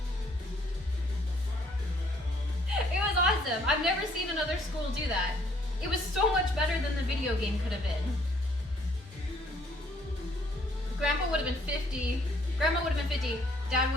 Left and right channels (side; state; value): both; normal; correlation 0.63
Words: It was awesome. I've never seen another school do that. It was so much better than the video game could have been. Grandpa would have been 50. Grandma would have been 50. Dad